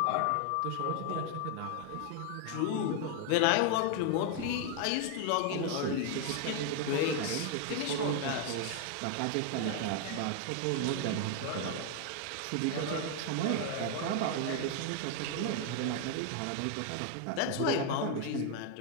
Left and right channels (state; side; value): different; both; correlation 0.01